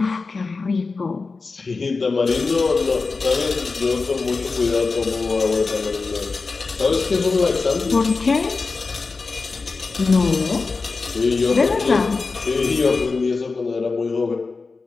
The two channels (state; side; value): quieter; right; 4.2 dB